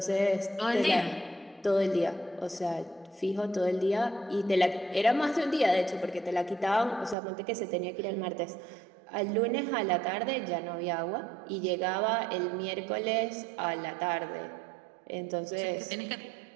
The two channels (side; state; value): left; drops out; at 7.2 s